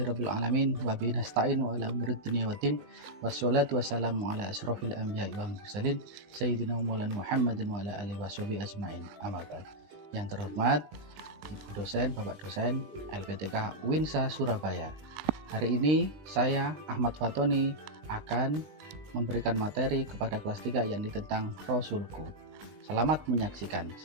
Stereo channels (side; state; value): left; late; 20 ms